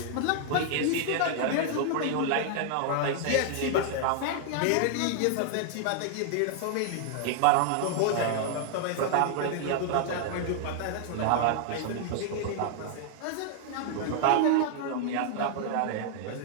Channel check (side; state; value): both; different; correlation 0.00